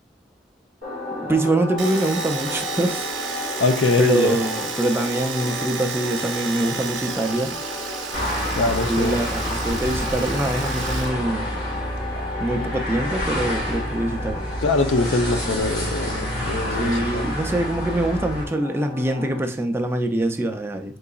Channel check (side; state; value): both; normal; correlation 0.56